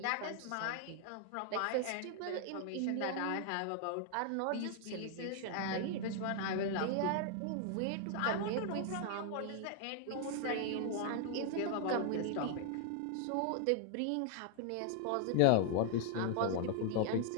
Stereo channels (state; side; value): different; both; correlation 0.00